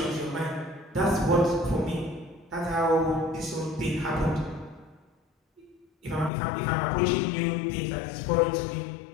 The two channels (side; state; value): right; drops out; at 6.3 s